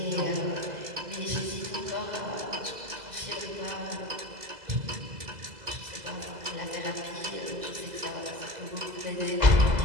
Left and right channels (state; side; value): late; left; 2.0 ms